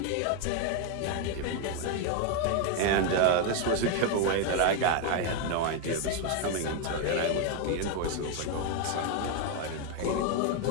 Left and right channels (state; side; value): different; both; correlation 0.01